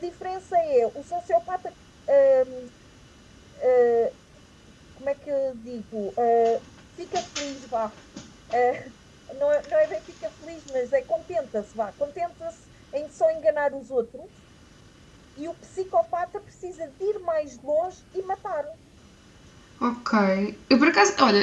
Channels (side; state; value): both; identical; correlation 1.00